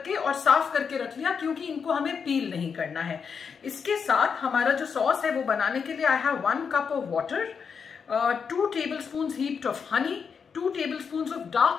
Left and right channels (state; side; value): quieter; right; 6.2 dB